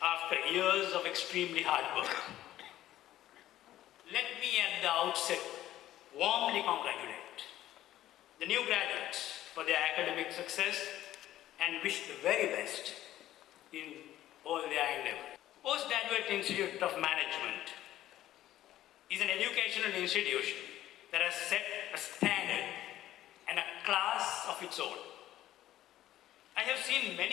after years of extremely hard work. Let me at the outset warmly congratulate the new graduates for their academic success and wish the very best in all their endeavors. Postgraduate Institute of Management is an educational institution that has set a standard and a class of its own. I have seen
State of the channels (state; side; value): quieter; right; 13.5 dB